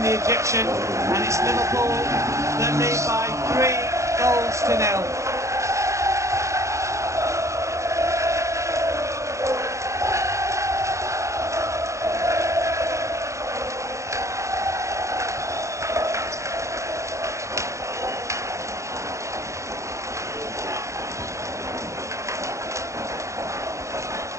the Egyptian, and it's Liverpool that lead by 3-0.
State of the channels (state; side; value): late; left; 0.14 ms